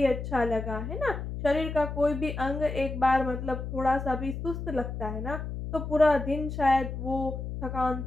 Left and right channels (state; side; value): noise; left; hum, 6 dB below the sound